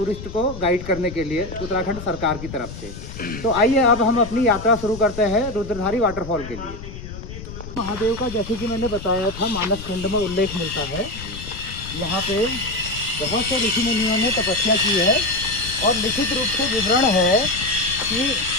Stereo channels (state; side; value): noise; left; rumble, 11 dB below the sound